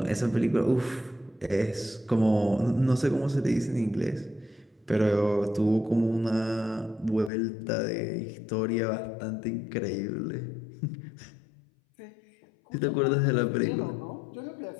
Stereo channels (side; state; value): right; drops out; at 7.3 s